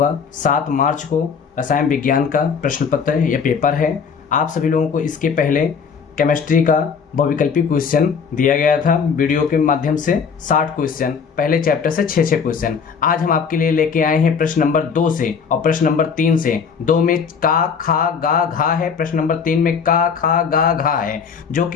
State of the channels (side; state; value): right; quieter; 6.2 dB